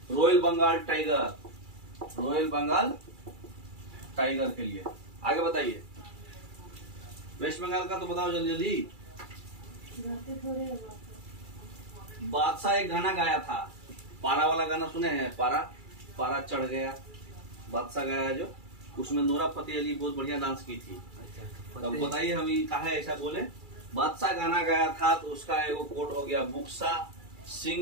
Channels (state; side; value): late; left; 2.3 ms